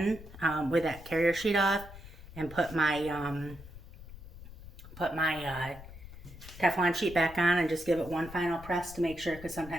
with that carrier sheet off and put my Teflon sheet back on and just give it one final press to make sure, because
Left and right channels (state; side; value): noise; left; rumble, 16 dB below the sound